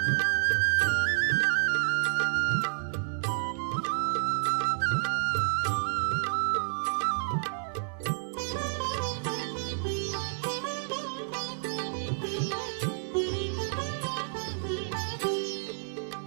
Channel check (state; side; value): silent; left; 56 dB below the other